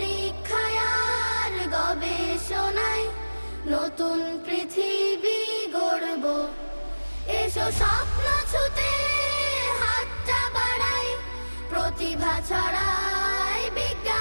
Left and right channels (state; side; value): inverted; both; correlation -1.00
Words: আর গবেষণায় নতুন পৃথিবী গড়ব। এসো স্বপ্ন ছুতে হাতটা বাড়াই, প্রতিভা ছড়াই